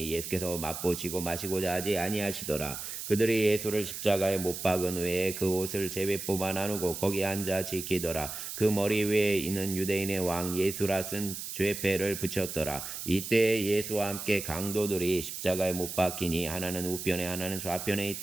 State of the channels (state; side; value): noise; right; hiss, 7 dB below the sound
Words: 예수께서 맛보시고 마시고자 하지 아니하시더라. 그들이 예수를 십자가에 못 박은 후에 그 옷을 제비 뽑아 나누고 거기 앉아 지키더라. 그 머리 위에 있는 유대인의 왕 예수라 쓴 죄패를 붙였더라. 이때 예수와 함께 강도들이 십자가에 못 박히니 하나는 우편에 하나는 좌편에